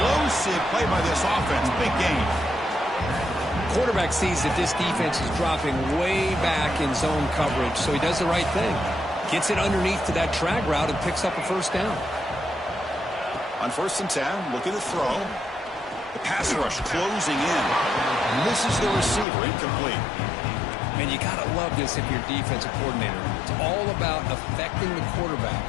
play by this offense. Big gain. Quarterback sees that this defense is dropping way back in zone coverage, so he does the right thing. Gets it underneath to that drag route and picks up a first down. On 1st and 10, looking to throw. The pass rush closing in. Misses the receiver, incomplete. Man, you got to love this if you're defensive coordinator. It's all about affecting the quarterback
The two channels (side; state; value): right; drops out; at 19.2 s